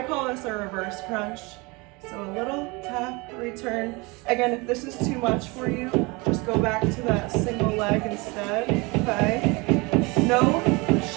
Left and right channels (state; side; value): quieter; left; 26.3 dB